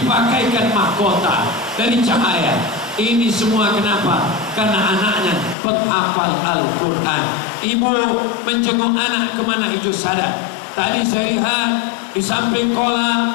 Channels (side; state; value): right; drops out; at 5.6 s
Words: mahkota dari cahaya. Ini semua kenapa? Karena anaknya penghafal Al-Quran. Ibu menjenguk anak ke Manhajus Sadat. Tadi saya lihat di samping